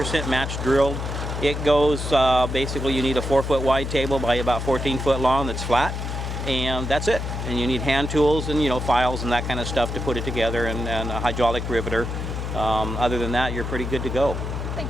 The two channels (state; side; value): noise; left; hum, 4 dB below the sound